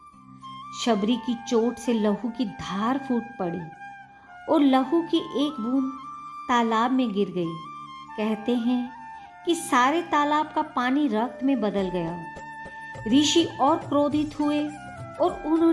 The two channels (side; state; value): both; identical; correlation 1.00